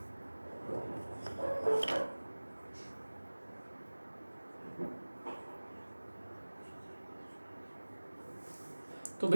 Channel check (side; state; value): both; inverted; correlation -1.00